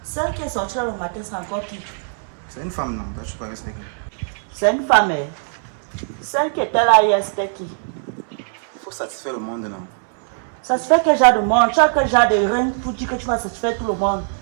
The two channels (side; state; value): left; silent; 65 dB below the other